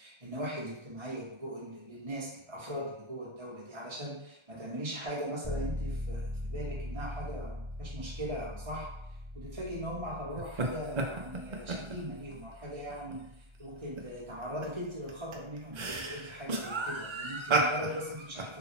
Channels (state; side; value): late; left; 1.3 ms